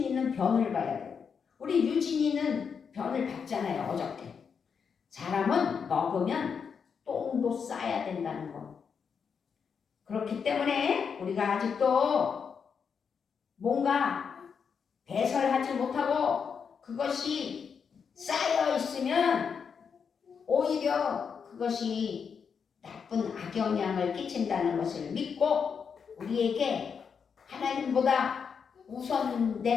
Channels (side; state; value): right; quieter; 6.4 dB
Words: 변을 봐야 돼요. 우리 유진이는 변을 봤잖아요. 어저께. 사람은 먹으면 똥도 싸야 된다는 거. 그렇기 때문에 우리가 아직도 뭔가 배설하지 못하고 그것이 쌓여 있으면 오히려 그것이 나쁜 악영향을 끼친다는 것을 믿고 우리에게 하나님보다